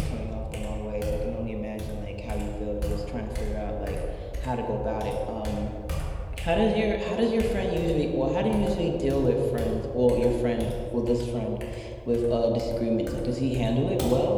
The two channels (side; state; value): both; identical; correlation 1.00